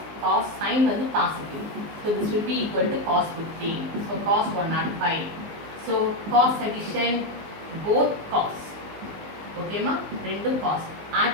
cos sin வந்து positive. So this will be equal to cos 15. So cos 105. So cos addition both cos. ஓகேமா? ரெண்டும் cos.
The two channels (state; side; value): late; left; 19 ms